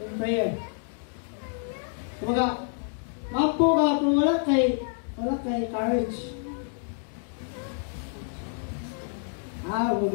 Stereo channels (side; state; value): right; silent; 59 dB below the other